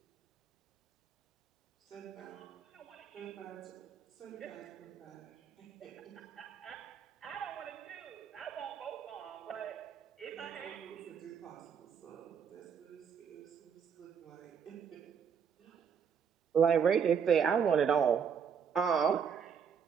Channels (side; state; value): left; quieter; 7.1 dB